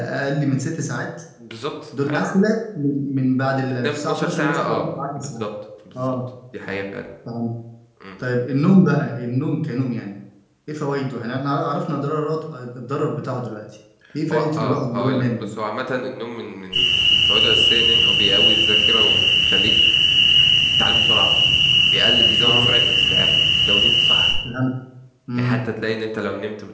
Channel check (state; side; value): identical; both; correlation 1.00